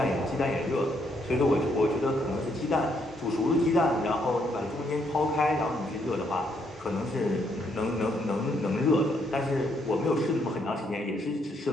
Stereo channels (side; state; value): both; normal; correlation 0.73